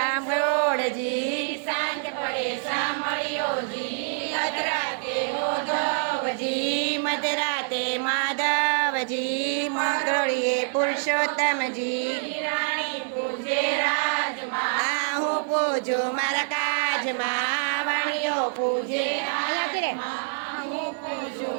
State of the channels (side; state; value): left; silent; 61 dB below the other